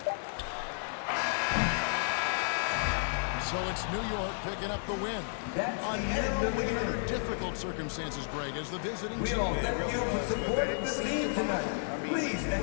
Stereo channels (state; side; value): silent; right; digital silence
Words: So it's New York picking up the win. That's A the end of narrow the win under game. difficult circumstances, Greg, as the visiting We all team. thank you for supporting the team tonight. Please